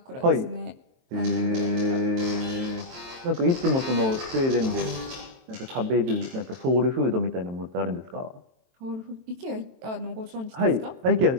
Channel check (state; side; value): late; left; 23 ms